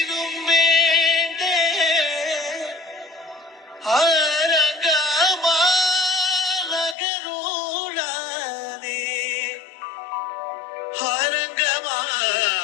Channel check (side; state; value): right; drops out; at 7.0 s